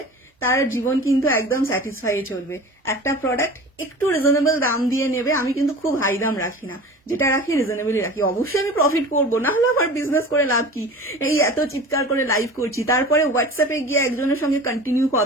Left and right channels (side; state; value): both; normal; correlation 0.37